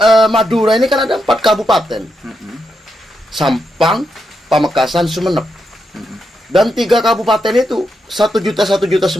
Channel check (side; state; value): both; normal; correlation 0.83